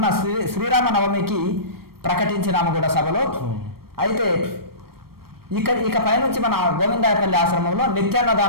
శ్రీరామ నవమికి ప్రకటించినాము కూడా సభలో. అయితే ఇక పైనుంచి మన గోవిందాయపల్లి ఆశ్రమంలో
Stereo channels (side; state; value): left; late; 0.94 ms